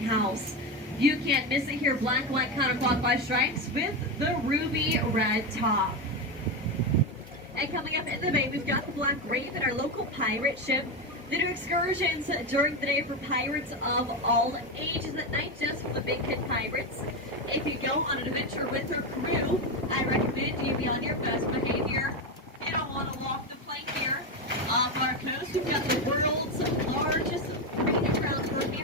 You can't miss it here, black, white, counterclockwise stripes with the ruby red top. And coming up in the bay, we've got the Black Raven, our local pirate ship. They do excursions during the day for pirates of all ages, at night just for the big kid pirates. If you go on an adventure with her crew, I recommend you be on your best behavior. You don't want to walk the plank here. Off our coast, we've got the world's largest breeding grounds for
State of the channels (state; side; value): normal; both; correlation 0.13